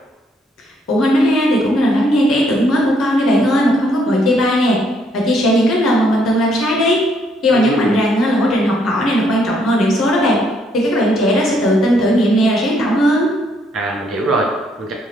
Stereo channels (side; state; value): both; normal; correlation 0.71